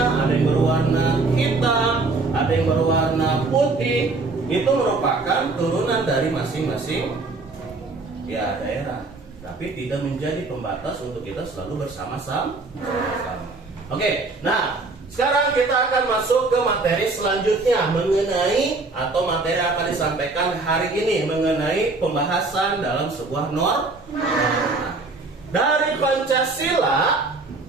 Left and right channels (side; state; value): left; quieter; 3.6 dB